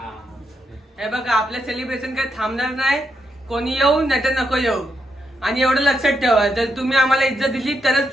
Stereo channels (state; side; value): normal; both; correlation 0.82